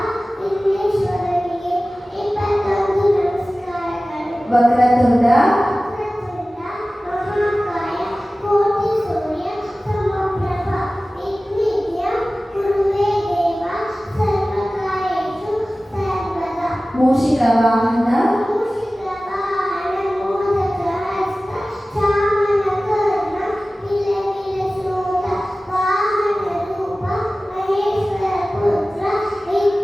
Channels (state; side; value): normal; both; correlation 0.97